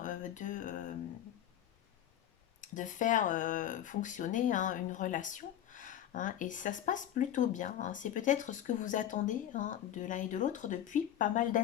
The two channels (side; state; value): right; quieter; 11.1 dB